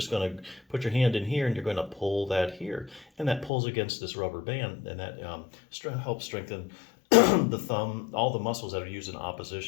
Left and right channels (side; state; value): right; drops out; at 3.5 s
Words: going to put your hand in here and you're going to pull that here, and that pulls against this rubber band, and that helps strengthen the thumb, all the muscles that are used in